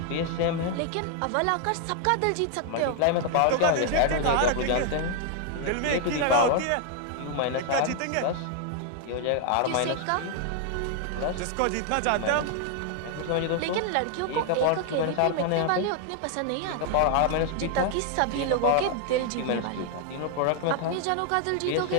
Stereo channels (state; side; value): different; both; correlation 0.00